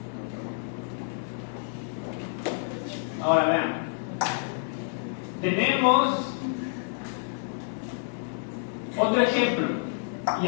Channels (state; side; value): silent; right; 57 dB below the other